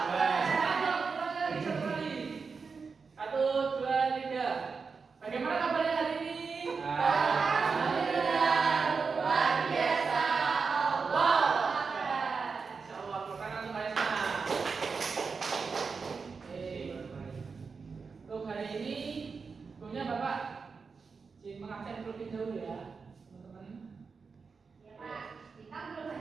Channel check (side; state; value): left; quieter; 5.1 dB